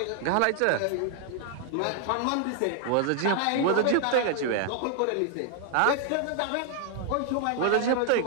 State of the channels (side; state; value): both; different; correlation 0.00